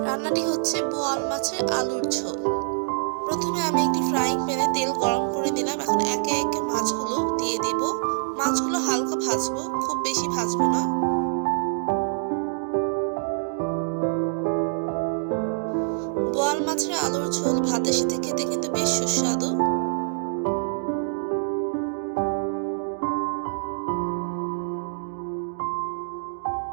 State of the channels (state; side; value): silent; left; digital silence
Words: রান্নাটি হচ্ছে বোয়াল মাছের আলুর ঝোল। প্রথমে আমি একটি ফ্রাইং প্যানে তেল গরম করে দিলাম। এখন একে একে মাছগুলো দিয়ে দেব। মাছগুলো হালকা ভাজবো, খুব বেশি ভাজবো না। বোয়াল মাছের আলুর ঝোল ভাতের সাথে খেতে কিন্তু বেশ সুস্বাদু।